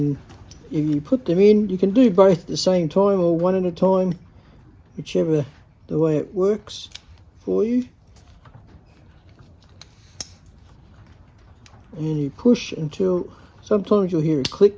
if you put them in, you can do both at the same time or one at a time, whichever the way it works for you. And you push until sometimes you'll hear a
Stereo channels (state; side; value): identical; both; correlation 1.00